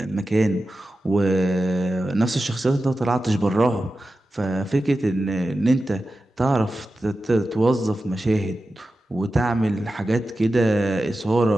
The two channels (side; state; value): both; normal; correlation 0.93